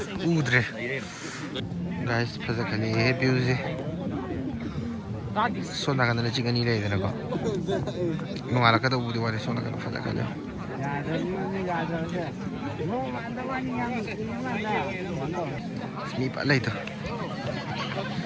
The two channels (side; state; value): both; identical; correlation 1.00